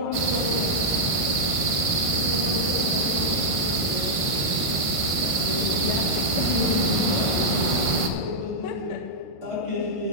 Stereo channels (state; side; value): late; right; 1.5 ms